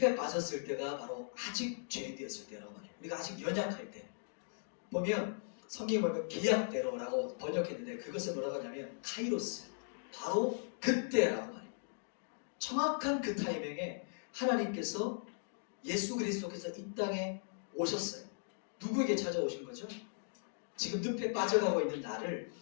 빠졌을 때가 바로 아직 죄인되었을 때라고 말해요. 우리가 아직 연약할 때. 보면 성경에 보면 계약대로라고 번역했는데 그것을 뭐라고 하냐면 카이로스. 바로 그때라고 말해요. 정확한 그 타이밍에 하나님께서 예수 그리스도께서 이 땅에 오셨어요. 누구에게 찾아오신 거죠? 지금 늪에 빠져가고 있는 나를,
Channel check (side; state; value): right; silent; digital silence